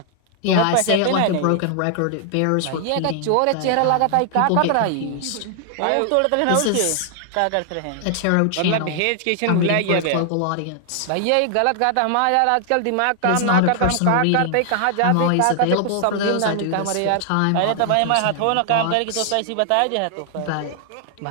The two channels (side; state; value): both; different; correlation 0.00